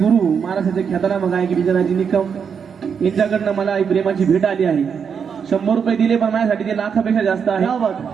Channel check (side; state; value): left; quieter; 6.8 dB